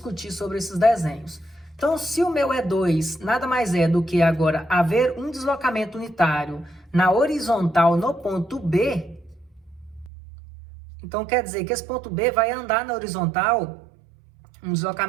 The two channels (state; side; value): drops out; left; at 10.1 s